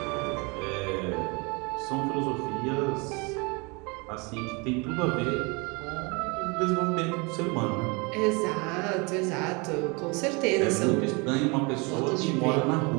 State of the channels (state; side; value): quieter; left; 29.2 dB